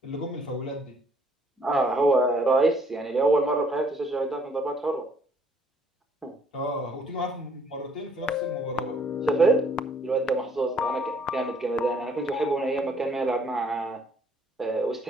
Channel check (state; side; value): normal; both; correlation 0.64